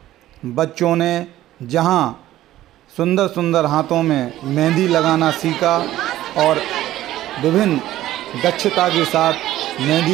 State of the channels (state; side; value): quieter; left; 14.3 dB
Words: बच्चों ने जहां सुंदर सुंदर हाथों में मेहंदी लगाना सीखा और विभिन्न दक्षता के साथ